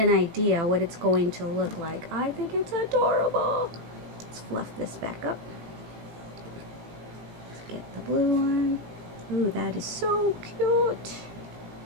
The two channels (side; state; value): left; late; 18 ms